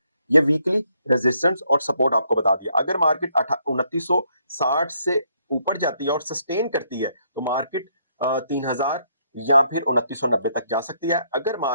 ये वीकली रेजिस्टेंस और सपोर्ट आपको बता दिया। अगर मार्केट 2960 से ऊपर जाती है और सस्टेन करती है तो मार्केट 3000 या फिर 2990 तक जा सकती है। अगर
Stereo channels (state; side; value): inverted; both; correlation -0.72